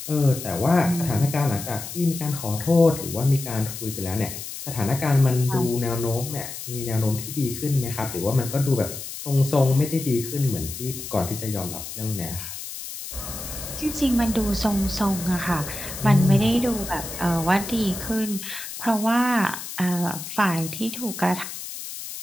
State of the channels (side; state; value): left; noise; hiss, 9 dB below the sound